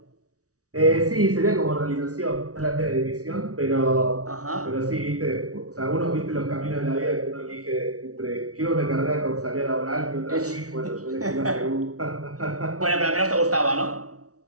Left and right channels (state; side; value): late; left; 0.66 ms